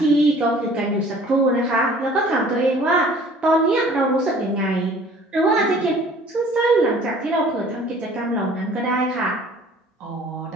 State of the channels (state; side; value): normal; both; correlation 0.51